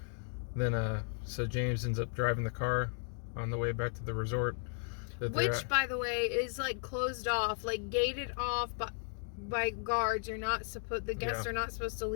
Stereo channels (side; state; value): right; silent; 54 dB below the other